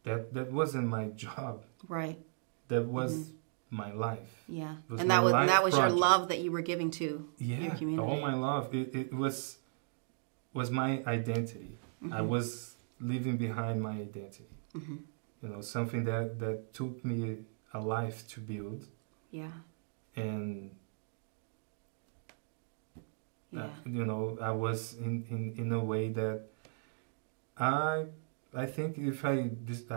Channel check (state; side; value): silent; left; digital silence